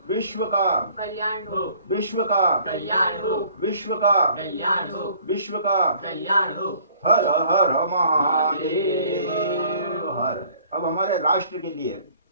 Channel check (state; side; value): inverted; both; correlation -0.55